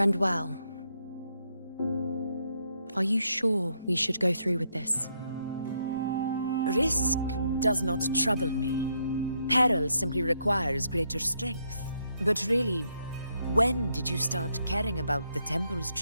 well. Are you sure we should go through with this? Risk does not trouble me. Peril simply requires greater strength. But really, when did you start caring about the temple's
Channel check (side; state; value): both; inverted; correlation -0.76